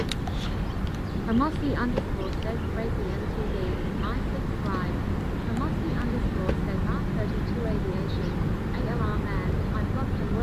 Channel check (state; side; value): identical; both; correlation 1.00